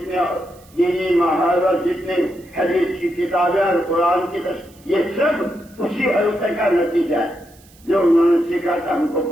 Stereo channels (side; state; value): right; noise; hiss, 28 dB below the sound